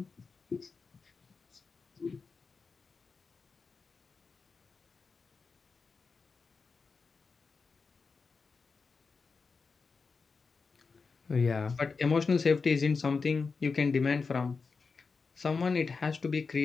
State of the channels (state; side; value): quieter; right; 4.7 dB